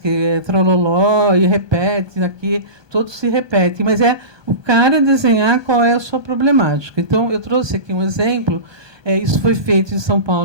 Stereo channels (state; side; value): late; left; 1.2 ms